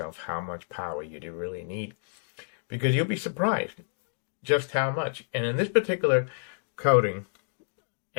how much power you do really need. Because you'll be surprised just how much. And in this particular coding,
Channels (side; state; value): right; silent; digital silence